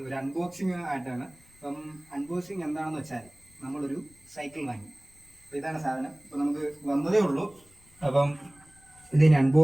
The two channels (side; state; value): left; noise; rumble, 28 dB below the sound